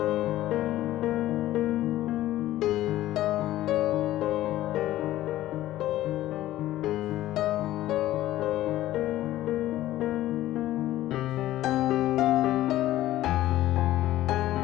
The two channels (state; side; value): quieter; right; 14.6 dB